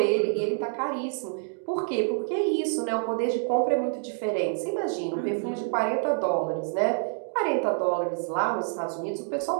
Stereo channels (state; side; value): silent; left; 60 dB below the other